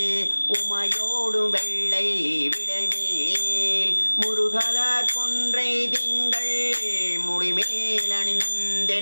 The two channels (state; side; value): inverted; both; correlation -1.00